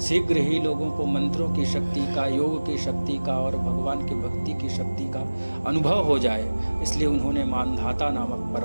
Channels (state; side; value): inverted; both; correlation -1.00